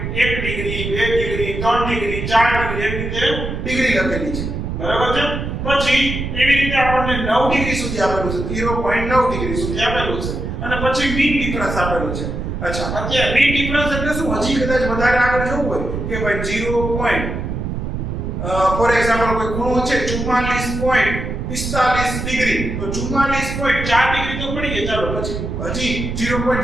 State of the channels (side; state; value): right; noise; rumble, 4 dB below the sound